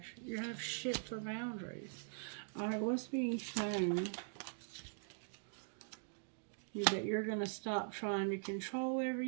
You have shit for boundaries. Alright, what's being shown? That you're going to stop trying to control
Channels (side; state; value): left; silent; digital silence